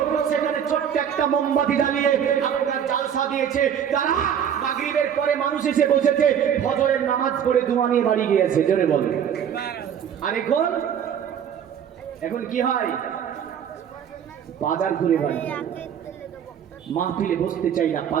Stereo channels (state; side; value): quieter; left; 8.6 dB